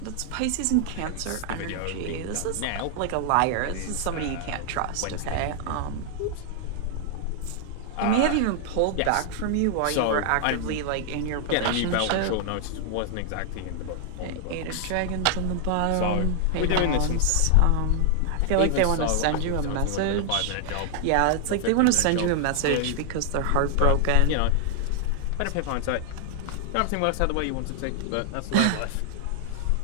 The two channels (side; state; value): both; different; correlation 0.00